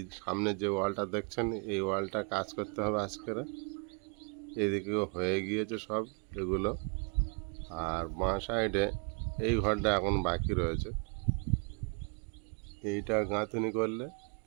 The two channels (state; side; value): quieter; left; 38.9 dB